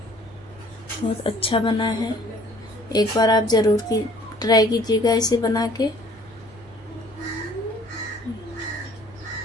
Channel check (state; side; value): normal; both; correlation 0.55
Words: बहुत अच्छा बना है। एक बार आप ज़रूर ट्राई कीजिएगा इसे बना के।